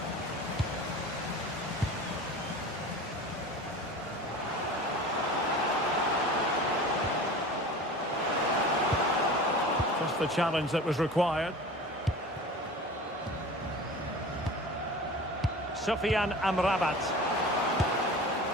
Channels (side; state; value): both; normal; correlation 0.37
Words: Just the challenge that was required. Sofiane Amrabat.